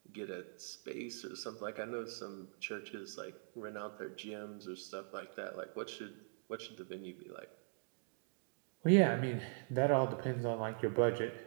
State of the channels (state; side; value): silent; left; digital silence